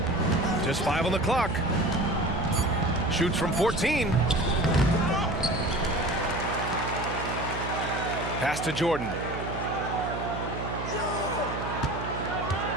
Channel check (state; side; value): noise; right; hum, 6 dB below the sound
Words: Just 5 on the clock. Shoots from 14. Pass to Jordan.